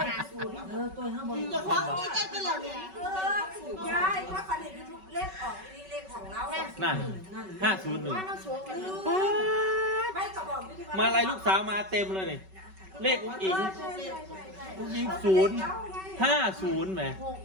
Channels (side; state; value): left; late; 5.3 ms